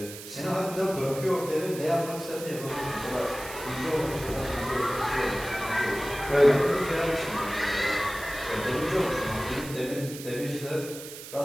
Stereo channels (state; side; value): noise; right; hiss, 12 dB below the sound